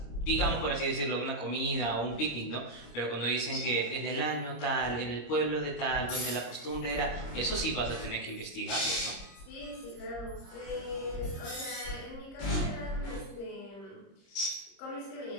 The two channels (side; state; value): right; late; 26 ms